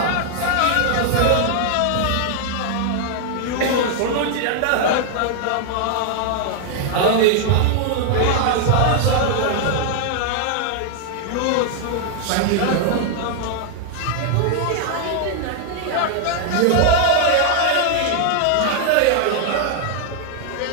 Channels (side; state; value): both; different; correlation 0.00